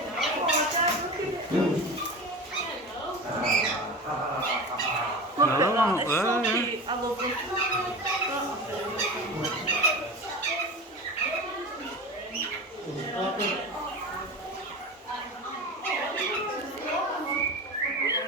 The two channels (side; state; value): both; normal; correlation 0.29